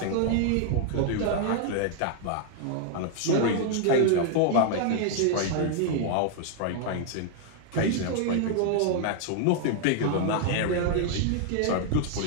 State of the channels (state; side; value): different; both; correlation 0.00